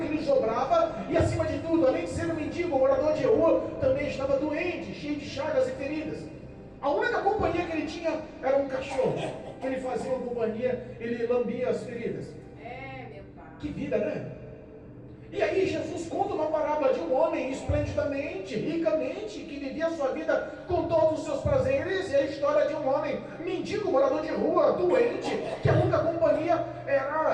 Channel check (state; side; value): identical; both; correlation 1.00